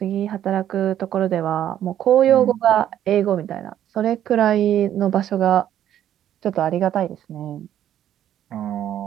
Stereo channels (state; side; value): quieter; left; 11.0 dB